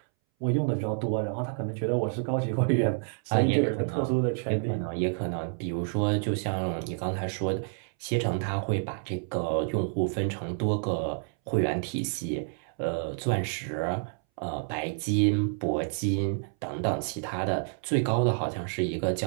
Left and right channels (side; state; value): left; silent; 59 dB below the other